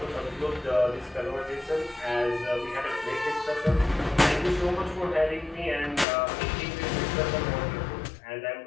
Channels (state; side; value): drops out; right; at 6.1 s